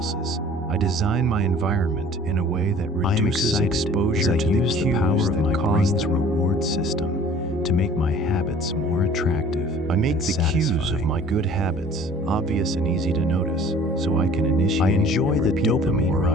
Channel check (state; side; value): normal; both; correlation 0.49